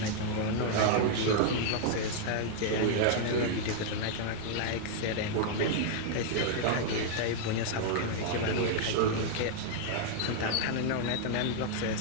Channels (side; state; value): both; different; correlation 0.00